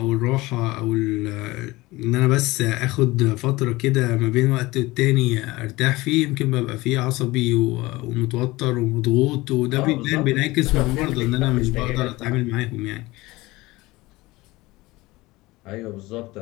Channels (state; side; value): quieter; right; 20.4 dB